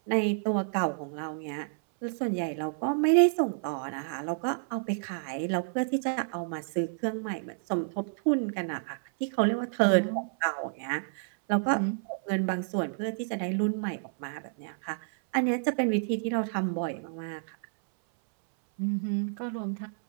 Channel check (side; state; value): left; silent; 58 dB below the other